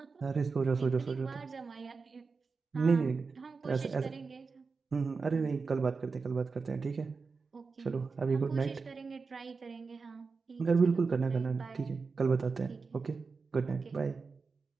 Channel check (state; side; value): quieter; left; 4.6 dB